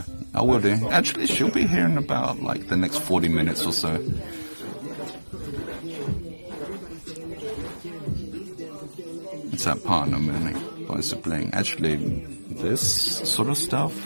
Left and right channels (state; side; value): inverted; both; correlation -1.00